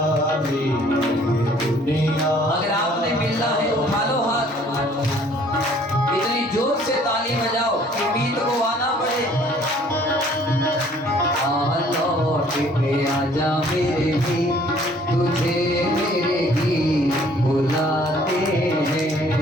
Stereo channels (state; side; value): normal; both; correlation 0.57